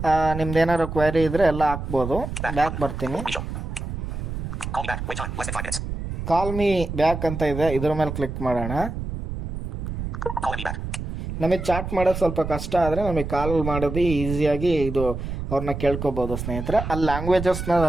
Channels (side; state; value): right; noise; rumble, 6 dB below the sound